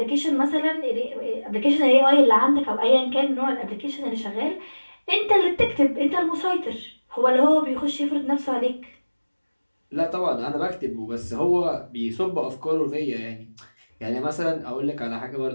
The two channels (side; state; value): both; inverted; correlation -1.00